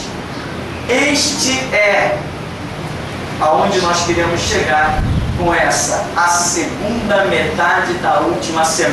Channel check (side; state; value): both; identical; correlation 1.00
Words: Este é aonde nós queremos chegar com essa, a segunda metade da última